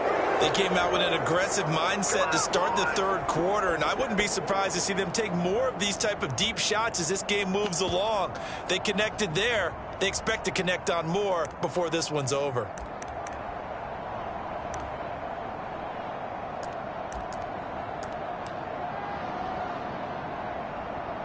They came out with an aggressive mindset to start the 3rd quarter, and I wouldn't be surprised to see them take more of these type of deep shots as this game moves along. They connected there. They expect to connect on more before this one's over.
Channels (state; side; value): identical; both; correlation 1.00